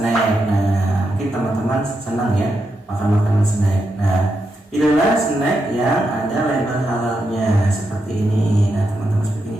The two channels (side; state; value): both; normal; correlation 0.84